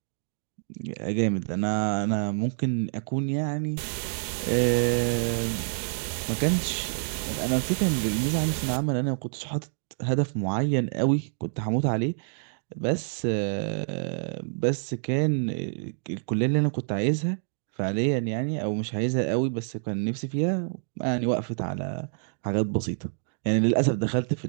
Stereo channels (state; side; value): silent; left; digital silence